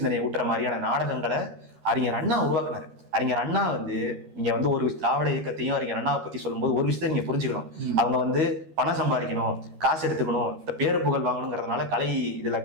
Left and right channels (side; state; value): left; late; 13 ms